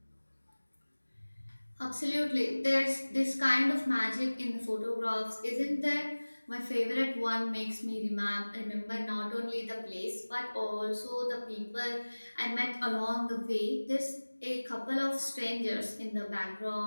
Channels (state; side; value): inverted; both; correlation -1.00